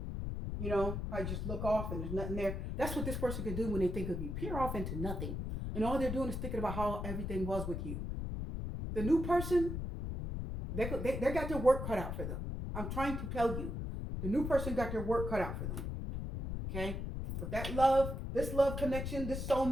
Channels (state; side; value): noise; left; rumble, 4 dB below the sound